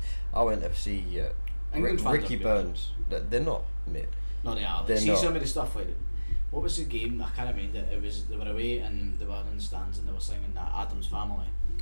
I went to see England fans Ricky are good. Burns. They're not, mate. No, they are. They're See not. some of the stuff What was the game? I can't remember it. It was they were away and they were in the stands and they were singing that Adam's Family.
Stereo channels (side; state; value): both; inverted; correlation -1.00